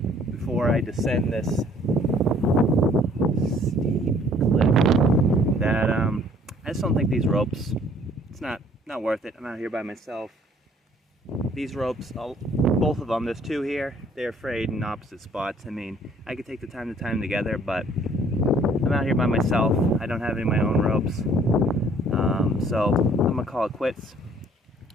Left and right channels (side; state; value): both; normal; correlation 0.59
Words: before I descend this steep cliff that I just don't think these ropes, it's not worth it. I'm out here by myself. These ropes, both of them, there's two here, they're frayed in opposite spots. I mean, I could take the time to tie them together, but I'm out here by myself. I don't have any of my own ropes. So I'm gonna call it quits.